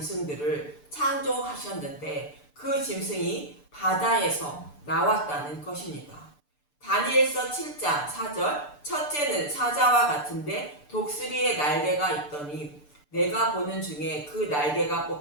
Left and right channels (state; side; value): late; right; 6.8 ms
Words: 창조하셨는데 그 짐승이 바다에서 나왔다는 것입니다. 다니엘서 7장 4절 첫째는 사자와 같은데 독수리의 날개가 있더니 내가 보는 중에 그 날개가